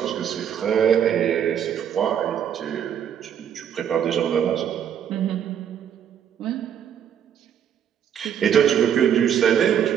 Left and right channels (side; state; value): left; quieter; 8.9 dB